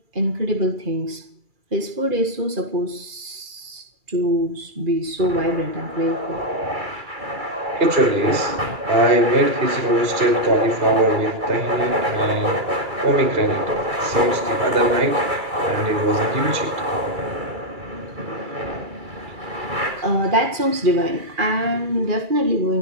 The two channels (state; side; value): late; left; 2.3 ms